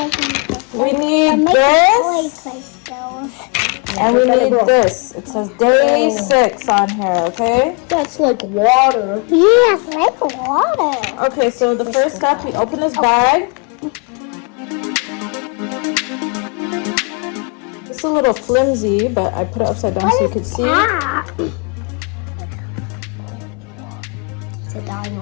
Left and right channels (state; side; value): quieter; right; 34.8 dB